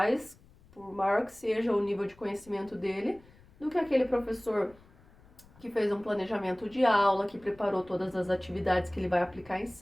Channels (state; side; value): noise; left; rumble, 26 dB below the sound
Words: que seja o nível de conhecimento dele, do que aquele professor que fez um planejamento de aula, que preparou todas as atividades que ele vai aplicar em